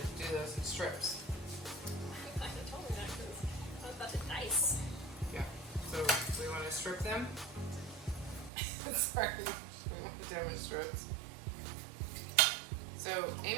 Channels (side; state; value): left; drops out; at 8.5 s